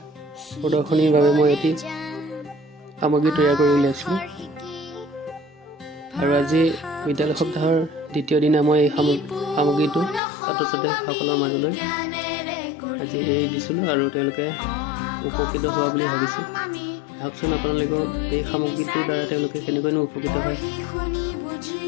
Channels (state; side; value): drops out; right; at 10.2 s